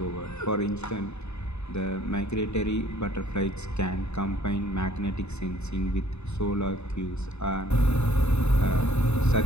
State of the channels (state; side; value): late; right; 0.81 ms